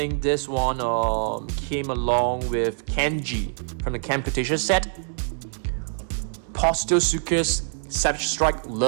this one came along with Kenji from the Camputation set. Postosuchus, Savage Strike,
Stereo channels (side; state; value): left; silent; 62 dB below the other